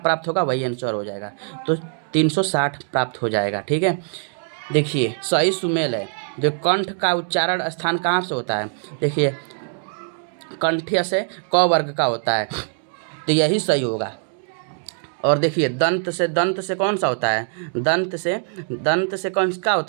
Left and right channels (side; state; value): left; silent; 57 dB below the other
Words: होगा, वही आंसर हो जाएगा, तो 360 प्राप्त हो जाएगा। ठीक है, देखिए सही सुमेल है। जो कंठ का उच्चारण स्थान कहाँ से होता है, देखिए कंठ्य से क वर्ग का होता है, तो यही सही होगा। और देखिए दंत से कौन सा होता है, दंत से कौन का